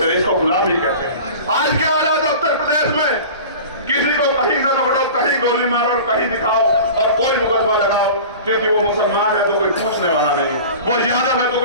रहे, इसको गुलामी कहते हैं। आज के हालात उत्तर प्रदेश में, किसी को कहीं से पकड़ो, कहीं गोली मारो और कहीं दिखाओ और कोई मुकदमा लगाओ, क्योंकि वो मुसलमान है तो कोई पूछने वाला नहीं है, वो यादव है तो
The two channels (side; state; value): both; inverted; correlation -0.37